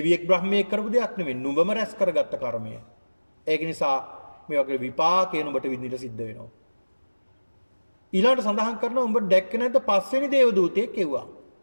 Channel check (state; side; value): inverted; both; correlation -1.00